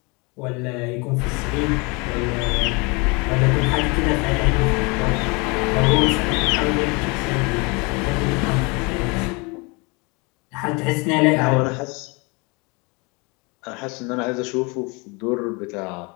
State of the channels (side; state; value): right; quieter; 28.6 dB